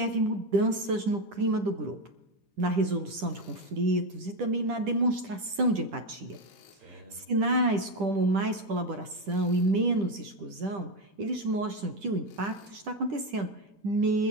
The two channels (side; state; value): left; late; 10 ms